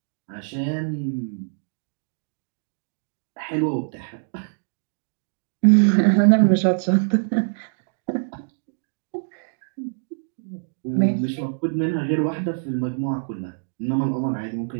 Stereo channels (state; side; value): silent; left; digital silence